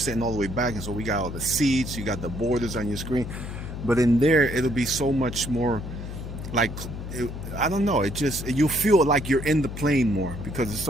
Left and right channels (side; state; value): left; noise; hum, 8 dB below the sound